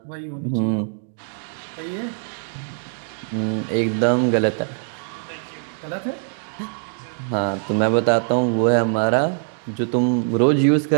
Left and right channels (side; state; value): left; silent; 64 dB below the other